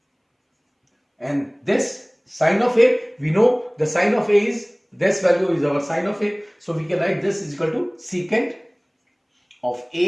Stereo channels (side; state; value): both; identical; correlation 1.00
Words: And this sine of A, we know the sine of A is, this value is our sine of A, so we can write this is equal to secant of